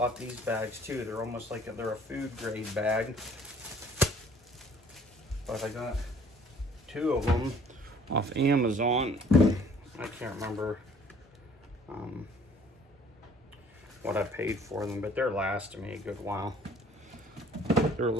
these bags too. They're almost like they're a food grade bag. But I got 2 of them off Amazon. I can't remember what I paid for them, but they're lasting me a good while. They're a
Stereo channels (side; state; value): both; normal; correlation 0.55